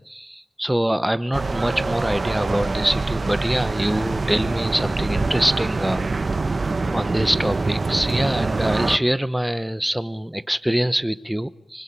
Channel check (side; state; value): both; normal; correlation 0.98